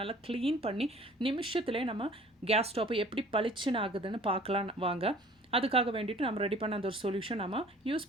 நல்லா க்ளீன் பண்ணி நிமிஷத்துலேயே நம்ம கேஸ் ஸ்டவ் எப்படி பளிச்சுன்னு ஆகுதுன்னு பார்க்கலாம் வாங்க. அதுக்காக வேண்டிட்டு நம்ம ரெடி பண்ண அந்த ஒரு சொல்யூஷன் நம்ம யூஸ்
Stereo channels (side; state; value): both; normal; correlation 0.50